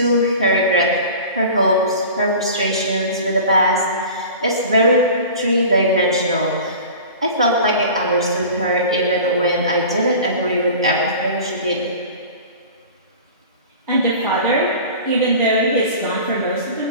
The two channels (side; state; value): both; inverted; correlation -0.38